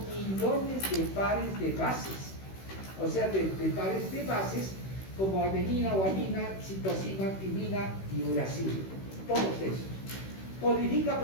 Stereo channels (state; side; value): late; right; 16 ms